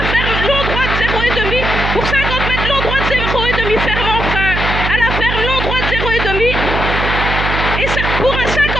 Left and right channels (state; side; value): noise; right; hum, 2 dB below the sound